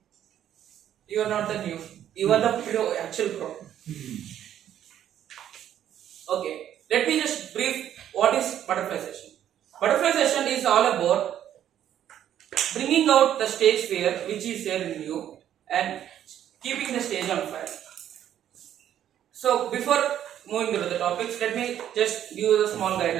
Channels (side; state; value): left; quieter; 10.7 dB